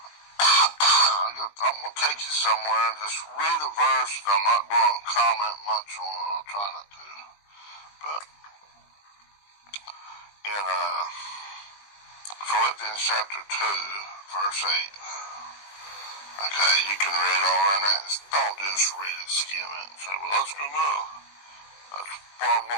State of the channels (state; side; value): late; right; 20 ms